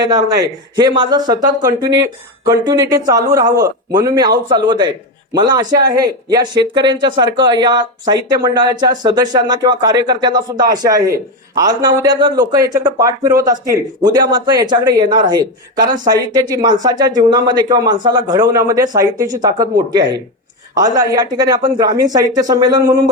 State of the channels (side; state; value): both; normal; correlation 0.13